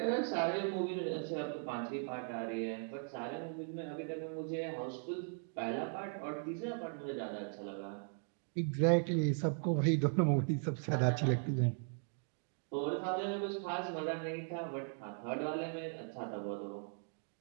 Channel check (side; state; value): left; silent; 52 dB below the other